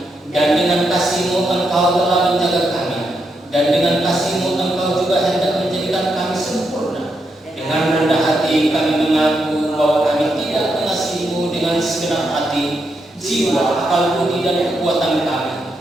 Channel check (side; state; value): both; normal; correlation 0.82